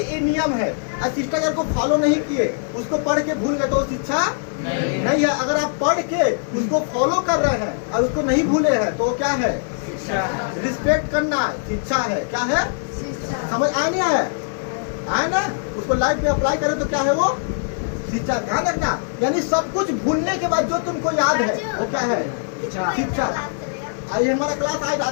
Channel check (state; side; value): silent; right; digital silence